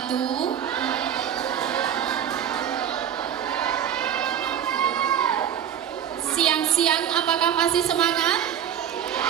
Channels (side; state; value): left; quieter; 9.5 dB